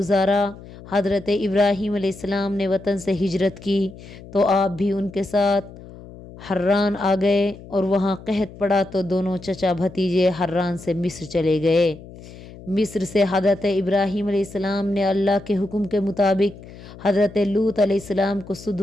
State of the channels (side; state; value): left; noise; hum, 17 dB below the sound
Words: حضرت ابراہیم علیہ السلام نے وطن سے ہجرت کی تو آپ بھی ان کے ساتھ حران آ گئے، اور وہاں قحط پڑا تو دونوں چچا بھتیجے حران سے مصر چلے گئے۔ مصر سے حضرت ابراہیم علیہ السلام نے اللہ کے حکم کے مطابق حضرت لوط علیہ السلام کو